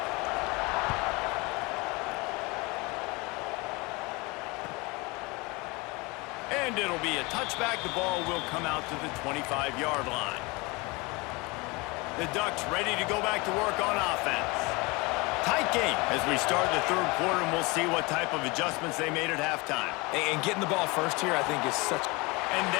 And it'll be a touchback. The ball will come out to the 25-yard line. The Ducks ready to go back to work on offense. Tight game as we start the third quarter, and we'll see what type of adjustments they made at halftime. And getting the ball first here, I think, is such... And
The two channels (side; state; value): right; quieter; 25.6 dB